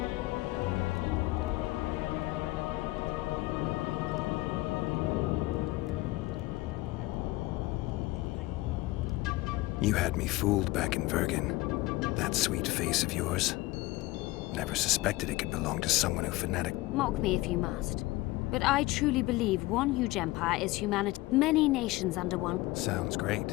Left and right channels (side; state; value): right; quieter; 19.7 dB